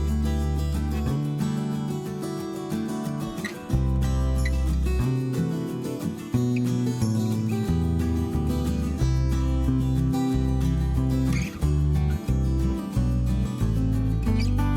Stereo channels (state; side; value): identical; both; correlation 1.00